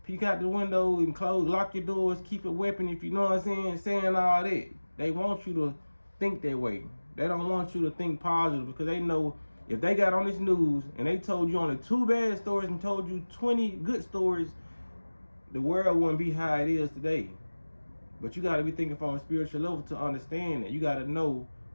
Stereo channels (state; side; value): inverted; both; correlation -1.00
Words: peek out the window, and lock your doors, keep a weapon if you know what I'm saying. Saying all that. They want you to think that way. They don't want you to think positive because they know if they got on this news and they told you only 2 bad stories and told you 20 good stories, the world wouldn't be how it is today. But you got to be thinking from a spiritual level to understand that. You got to know